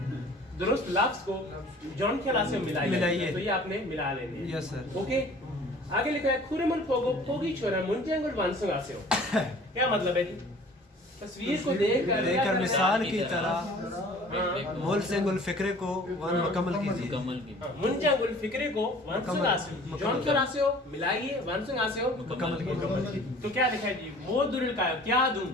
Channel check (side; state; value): both; normal; correlation 0.49